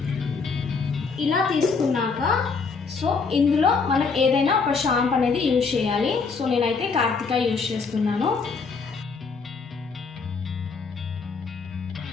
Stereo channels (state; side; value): quieter; right; 4.9 dB